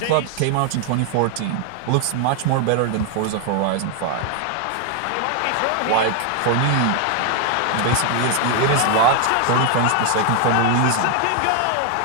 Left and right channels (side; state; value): both; different; correlation 0.00